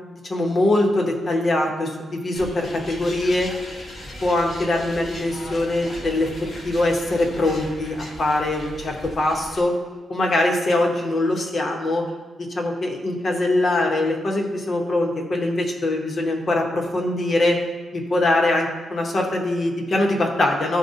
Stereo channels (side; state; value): both; normal; correlation 0.85